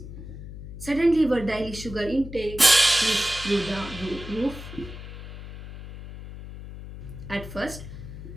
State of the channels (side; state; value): left; noise; hum, 12 dB below the sound